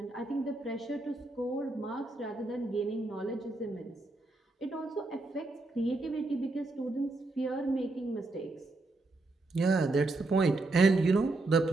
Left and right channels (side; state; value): left; quieter; 3.1 dB